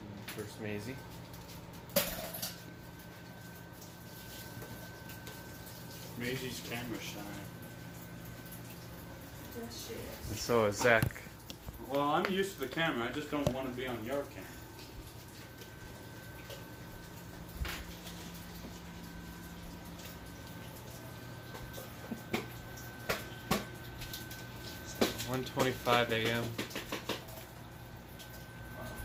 First Maisie. Maisie's camera shy. Yes, she And is. so is Zach. Well, I'm used to the camera. I just don't want to be on your camera. It's 1:25 a.m.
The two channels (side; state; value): both; identical; correlation 1.00